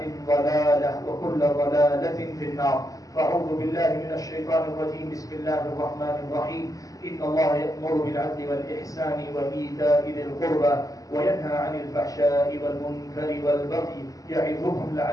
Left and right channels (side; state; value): right; late; 0.17 ms